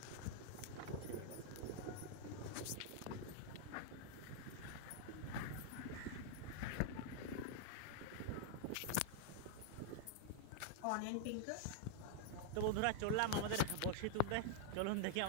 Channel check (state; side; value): different; both; correlation 0.00